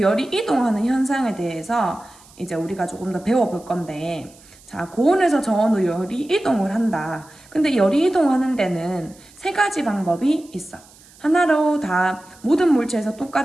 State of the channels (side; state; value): right; noise; hiss, 25 dB below the sound